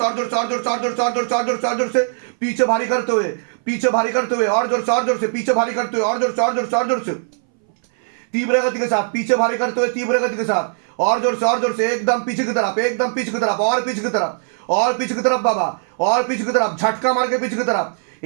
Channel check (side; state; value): left; silent; 63 dB below the other